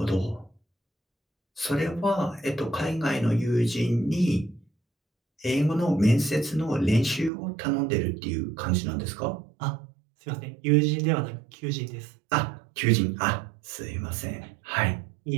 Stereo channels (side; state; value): left; drops out; at 7.3 s